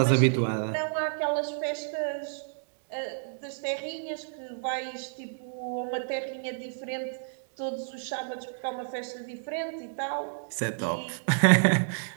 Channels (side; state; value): left; silent; digital silence